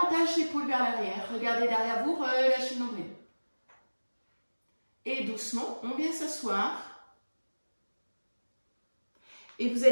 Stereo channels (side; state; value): both; inverted; correlation -1.00